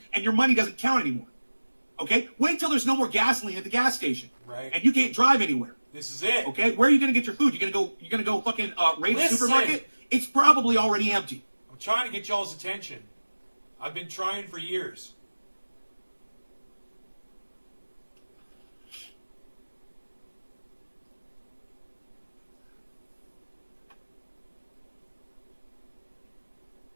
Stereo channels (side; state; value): both; inverted; correlation -1.00